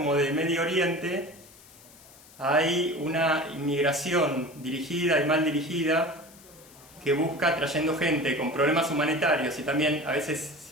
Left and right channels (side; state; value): left; noise; hiss, 23 dB below the sound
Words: de Medio Oriente, hay una inmigración dirigida y mal dirigida que busca, trayendo gente con problemas humanitarios y también a veces